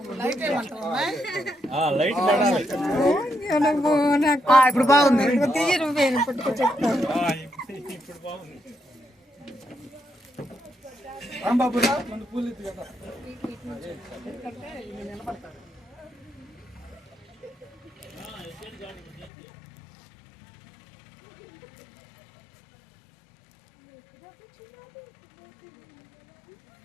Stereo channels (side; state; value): right; drops out; at 19.3 s